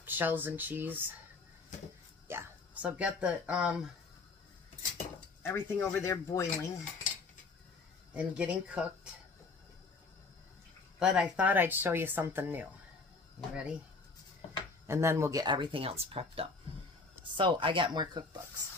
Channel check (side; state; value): right; quieter; 4.1 dB